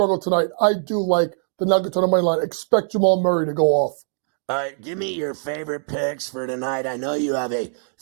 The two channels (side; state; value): left; silent; digital silence